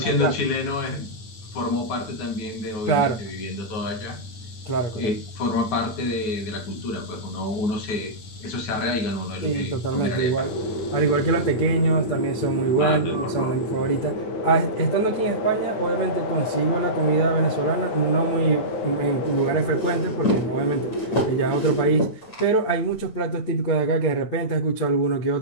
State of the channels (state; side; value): late; right; 9.3 ms